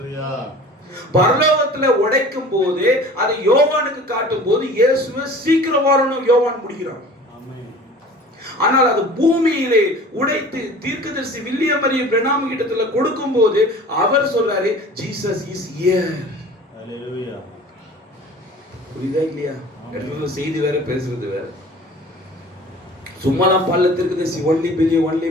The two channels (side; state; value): both; normal; correlation 0.43